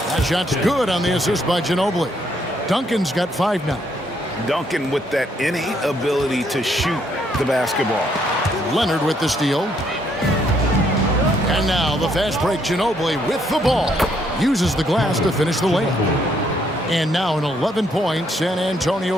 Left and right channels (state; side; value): normal; both; correlation 0.71